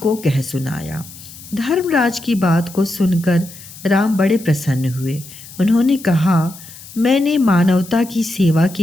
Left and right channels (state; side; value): noise; left; hiss, 17 dB below the sound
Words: कह सुनाया। धर्मराज की बात को सुनकर राम बड़े प्रसन्न हुए। उन्होंने कहा, मैंने मानवता की सेवा